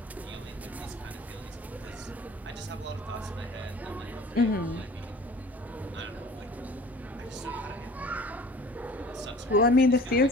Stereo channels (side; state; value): both; normal; correlation 0.45